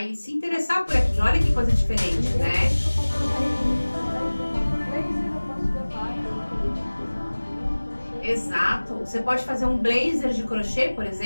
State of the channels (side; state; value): both; inverted; correlation -1.00